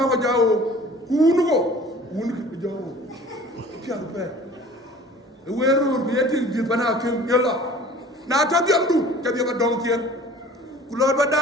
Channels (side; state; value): both; normal; correlation 0.47